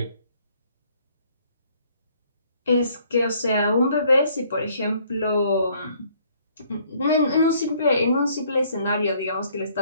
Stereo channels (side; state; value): both; inverted; correlation -0.63